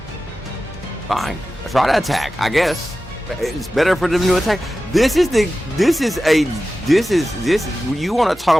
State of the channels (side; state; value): both; normal; correlation 0.94